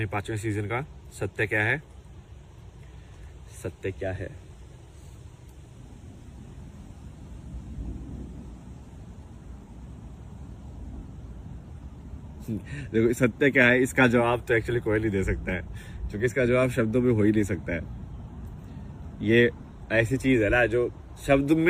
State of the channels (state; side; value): identical; both; correlation 1.00